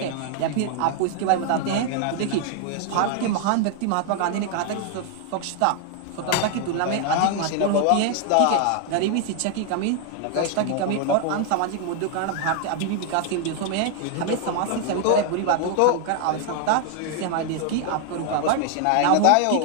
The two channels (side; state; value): both; different; correlation 0.00